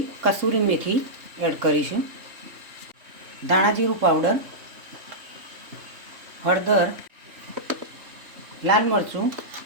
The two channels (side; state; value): left; late; 3.2 ms